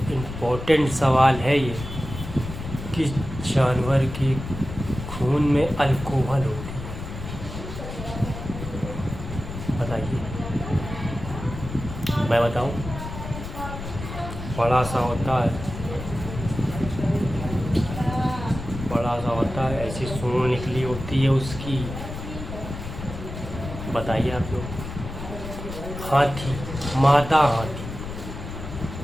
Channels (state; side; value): noise; left; rumble, 9 dB below the sound